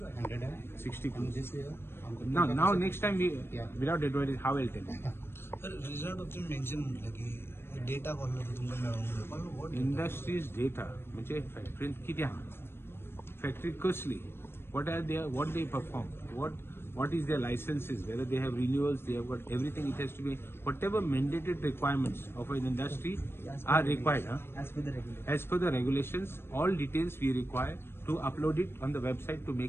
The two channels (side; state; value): right; late; 0.11 ms